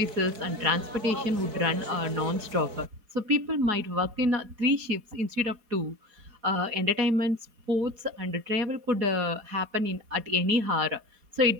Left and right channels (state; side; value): late; left; 4.8 ms